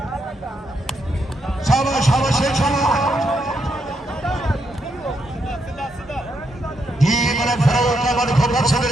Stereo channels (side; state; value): both; normal; correlation 0.79